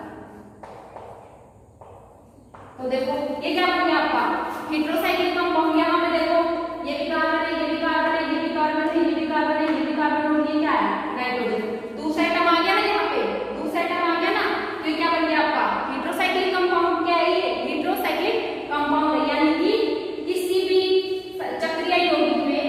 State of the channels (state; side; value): identical; both; correlation 1.00